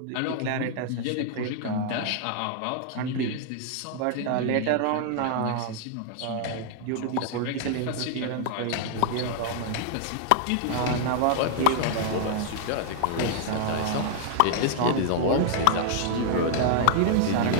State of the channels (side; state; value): both; different; correlation -0.01